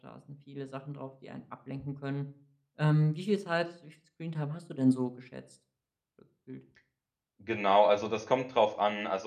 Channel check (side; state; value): both; identical; correlation 1.00